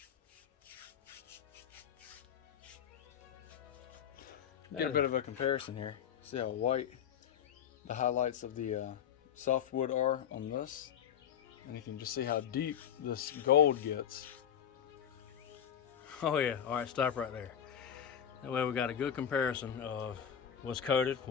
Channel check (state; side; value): quieter; right; 9.0 dB